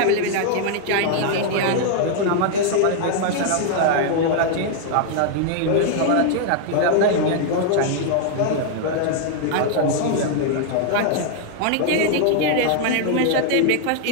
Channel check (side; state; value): both; different; correlation 0.00